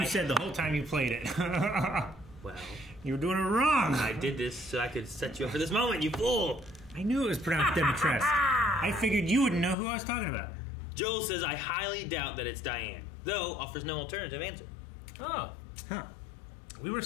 you said the whole time you played it. Well, you were doing it wrong. I did this so I could set you up for this moment, you fool. I knew it was pronounced Dimitrescu. I figured you wouldn't know who I was talking about. Joel says I highly doubt that it's Diane, though offers no alternative answer. Oh. Huh. We were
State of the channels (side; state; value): right; drops out; at 9.8 s